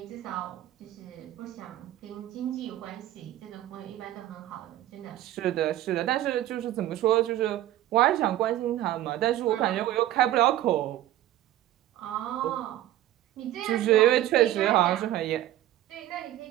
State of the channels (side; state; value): left; quieter; 13.7 dB